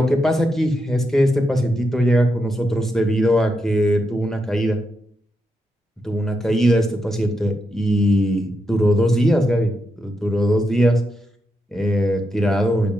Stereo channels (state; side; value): normal; both; correlation 0.84